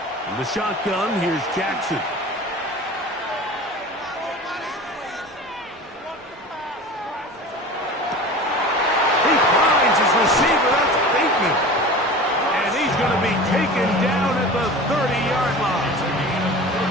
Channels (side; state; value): both; normal; correlation 0.36